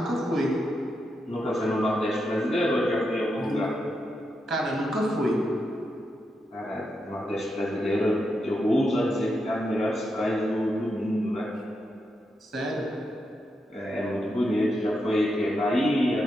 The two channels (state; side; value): normal; both; correlation 0.85